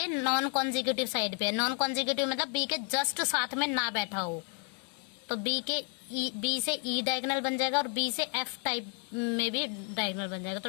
नॉन कॉन्जिक्यूटिव साइड पे है। नॉन कॉन्जिक्यूटिव मतलब बी के जस्ट साथ में ना बैठा हो, तो बी से ई डायगोनल बन जाएगा, और बी से एफ टाइप में भी डायगोनल बन जाएगा।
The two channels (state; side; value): quieter; right; 36.4 dB